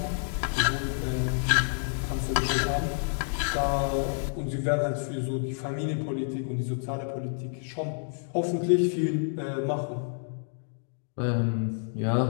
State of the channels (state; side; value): silent; right; digital silence